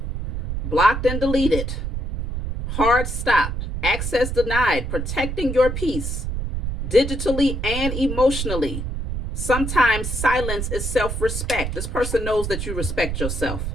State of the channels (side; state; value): right; noise; rumble, 4 dB below the sound